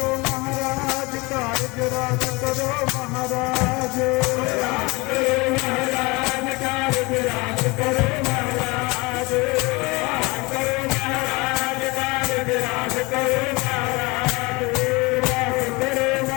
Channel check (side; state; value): right; quieter; 25.3 dB